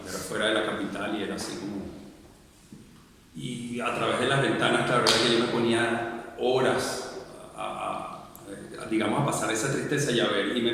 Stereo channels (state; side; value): identical; both; correlation 1.00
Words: era fuera de la capital y era así como... Y a través de las ventanas, la verdad es que yo me ponía horas digamos, a pasar esa tristeza y a ver, y me